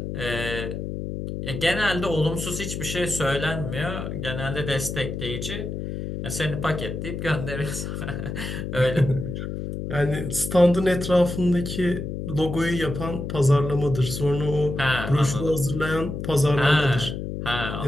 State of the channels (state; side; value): noise; left; hum, 5 dB below the sound